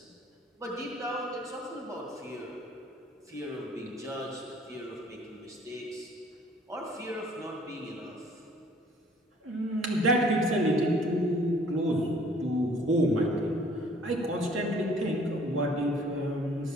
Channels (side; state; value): both; normal; correlation 0.56